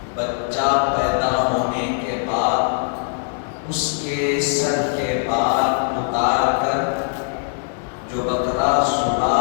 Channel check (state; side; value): silent; right; 65 dB below the other